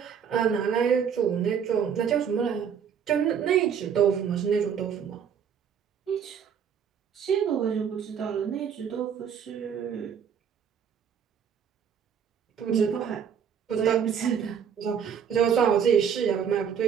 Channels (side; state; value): left; quieter; 7.7 dB